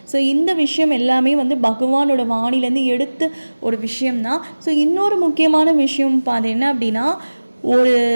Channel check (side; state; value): both; inverted; correlation -1.00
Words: ஸோ இந்த விஷயம் எல்லாமே வந்து பகவானோட வாணிலேருந்து எடுத்து ஒரு விஷயம்தான். ஸோ இன்னொரு முக்கியமான விஷயம் அது என்ன அப்படின்னா, ஒரு